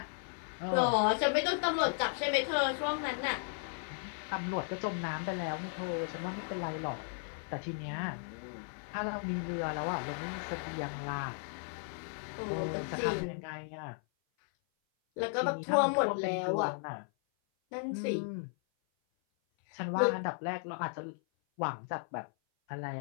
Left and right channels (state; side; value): silent; right; 54 dB below the other